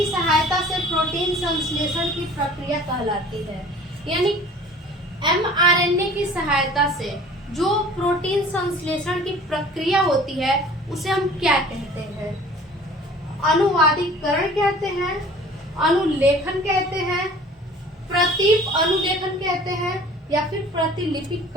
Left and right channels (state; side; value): normal; both; correlation 0.47